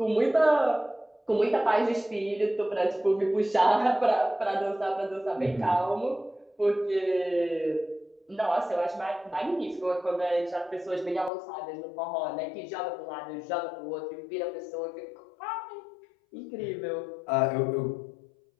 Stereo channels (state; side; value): drops out; right; at 11.3 s